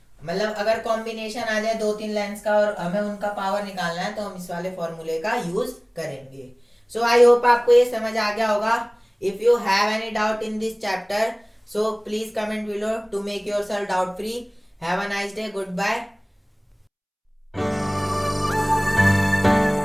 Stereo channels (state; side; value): identical; both; correlation 1.00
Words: मतलब अगर कॉम्बिनेशन आ जाए 2-3 लेंस का और हमें उनका पावर निकालना है तो हम इस वाले फॉर्मूले का यूज करेंगे। सो आई होप आपको ये समझ आ गया होगा। If you have any doubt in this chapter, so please comment below to make yourself doubt free. Have a nice day. Goodbye.